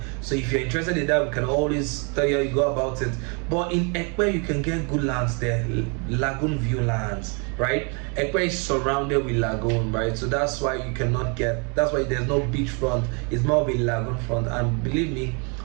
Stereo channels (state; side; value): quieter; left; 35.4 dB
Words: So if you're interested in that, we can always tell you how you go about it. But in Epe, you can get good lands there, lagoon view lands, right? Epe is surrounded with lagoon, right? So that's why you cannot get, that's why there's no beachfront. It's more of a lagoon front, and believe me,